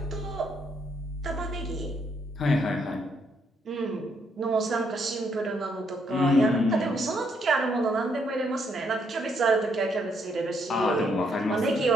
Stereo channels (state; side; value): normal; both; correlation 0.73